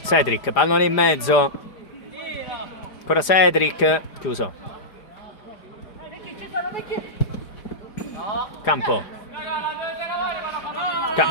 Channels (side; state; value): right; late; 4.9 ms